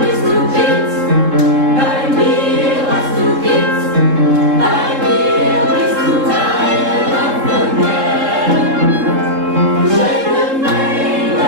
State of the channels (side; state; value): left; late; 3.7 ms